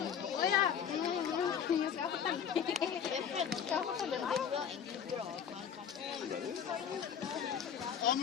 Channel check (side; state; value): right; quieter; 8.0 dB